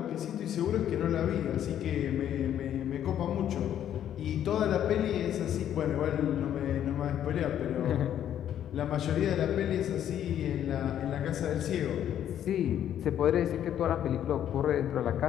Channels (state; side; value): quieter; right; 10.4 dB